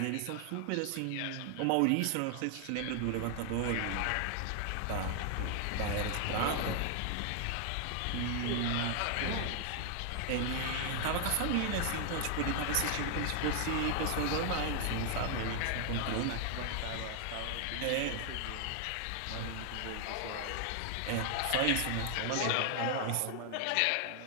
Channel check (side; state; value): both; different; correlation 0.00